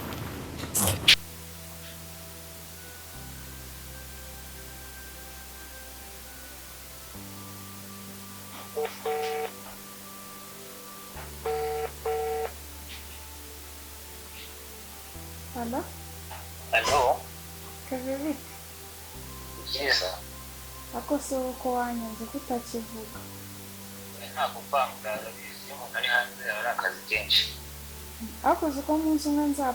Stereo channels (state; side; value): identical; both; correlation 1.00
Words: Halo? Halo? Kaviviti? Byiza. Ako se uko wanyanze kutakivuga? Ntabwo kwanga bizi umuntu ari hanze ari akazi kenshi. Ako uko munsi umwe